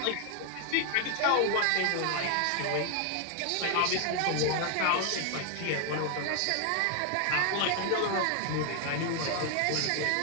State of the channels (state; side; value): different; both; correlation 0.00